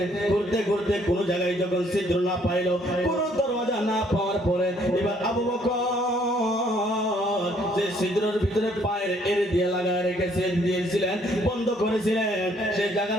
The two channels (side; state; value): both; normal; correlation 0.65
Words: ঘুরতে ঘুরতে কোন জায়গায় যখন ছিদ্র না পাইলো কোন দরওয়াজা না পাওয়ার পরে এবার আবু বকর যে ছিদ্রের ভিতরে পায়ের এড়ে দিয়ে লাগায় রেখেছে দিয়েছিলেন বন্ধ করেছিলেন সেই